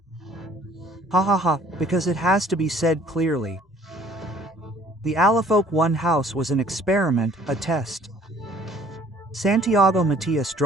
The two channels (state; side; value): normal; both; correlation 0.56